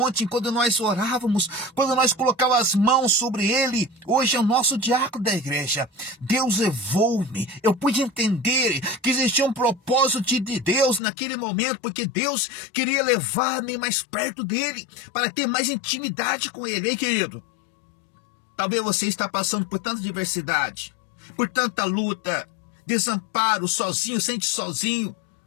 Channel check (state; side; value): drops out; right; at 11.0 s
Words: quando nós orávamos, quando nós colocávamos as mãos sobre ele. Hoje é o nosso diácono da igreja. Deus levou-me, eu pude entender que existia um propósito de Deus naquele momento, porque Deus queria levar-me mais perto dele, para ter mais intimidade com ele. Ei, querido, talvez você está passando por tanta diversidade, por tanta luta, desamparo, sozinho,